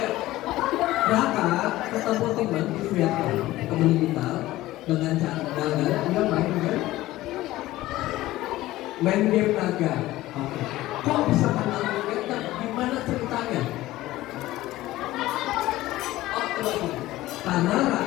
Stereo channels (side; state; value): right; quieter; 16.6 dB